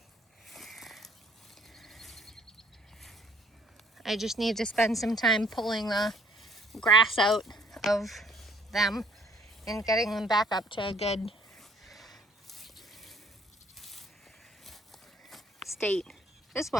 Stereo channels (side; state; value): both; normal; correlation 0.60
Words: I just need to spend some time pulling the grass out of them and getting them back up to a good state. This